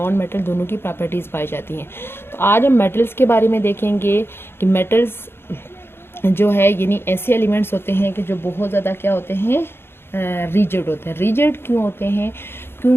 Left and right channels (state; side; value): late; right; 0.11 ms